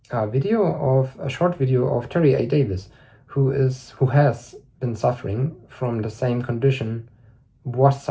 short video of Terry A. Davis, who has been suffering from the same condition, was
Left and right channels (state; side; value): identical; both; correlation 1.00